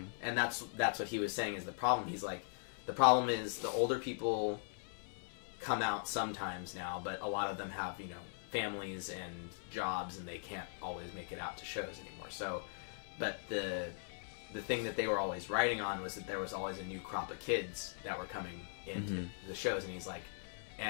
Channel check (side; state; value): right; silent; 51 dB below the other